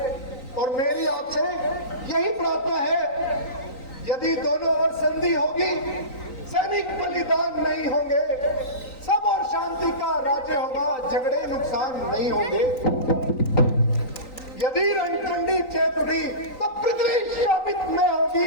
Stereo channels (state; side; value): late; right; 3.9 ms